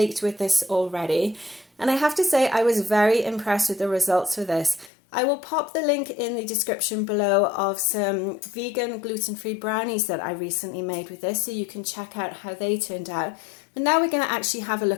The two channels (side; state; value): right; drops out; at 4.9 s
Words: with this already, and I have to say I was very impressed with the results for this. I will pop the link in the description below of some vegan gluten-free brownies that I recently made with this, so you can check out how they turned out. But now we're going to actually have a